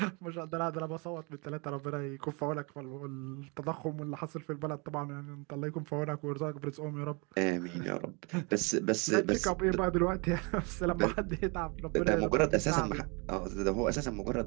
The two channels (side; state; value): left; quieter; 30.8 dB